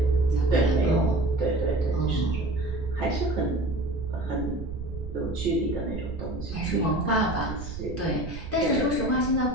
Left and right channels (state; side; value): noise; right; rumble, 9 dB below the sound